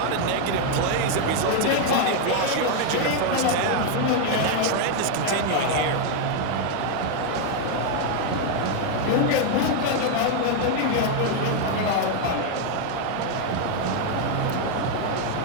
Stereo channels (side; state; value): both; different; correlation 0.00